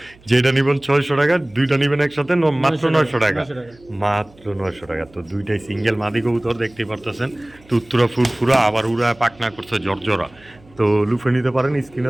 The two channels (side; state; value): right; noise; hum, 27 dB below the sound